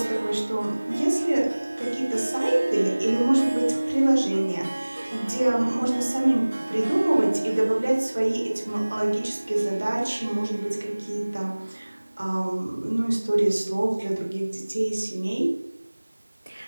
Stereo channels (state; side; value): inverted; both; correlation -1.00